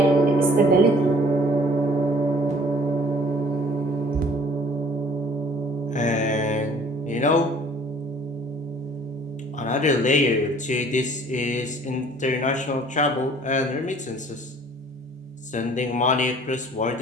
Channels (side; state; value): both; normal; correlation 0.53